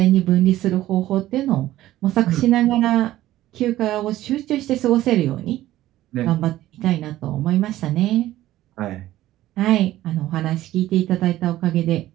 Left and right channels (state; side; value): quieter; left; 14.8 dB